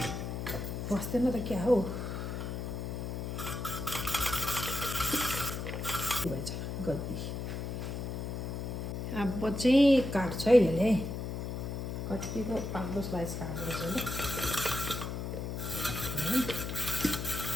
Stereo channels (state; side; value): noise; left; hum, 4 dB below the sound